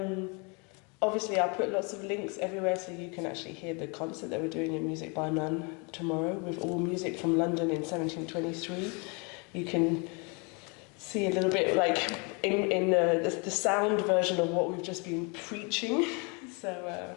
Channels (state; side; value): quieter; right; 32.2 dB